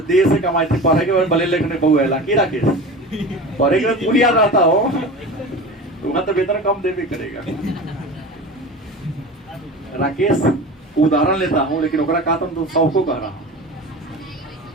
से कमाई थी, पढ़े के भले लेखने बहु है लाकी राकेश, पढ़े के पूरी याद रहता हो तो वहां तो वेतन कम देवे करेगा। राकेश उदाहरण लेता हूं, लेकिन ओकरा कहा तुम सबको कह रहा हूं,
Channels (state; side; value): normal; both; correlation 0.32